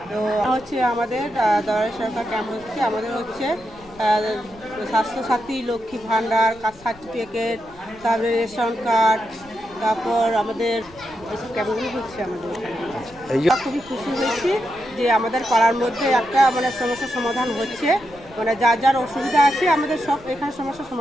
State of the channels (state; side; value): noise; left; rumble, 24 dB below the sound